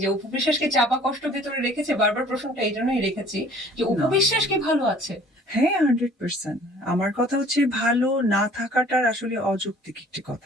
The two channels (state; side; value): normal; both; correlation 0.52